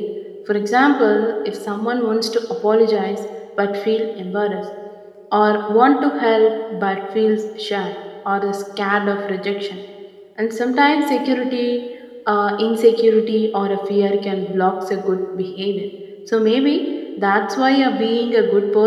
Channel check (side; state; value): both; identical; correlation 1.00